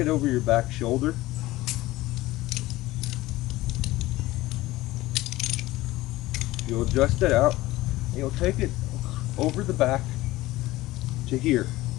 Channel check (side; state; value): right; quieter; 17.9 dB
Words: over your back shoulder. You'll adjust it out and you'll take it over the back to here.